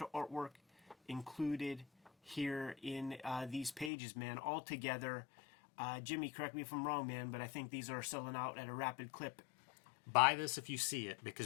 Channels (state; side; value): drops out; right; at 3.9 s